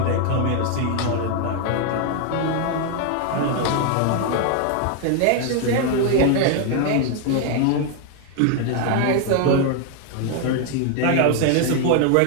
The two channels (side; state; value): both; different; correlation 0.00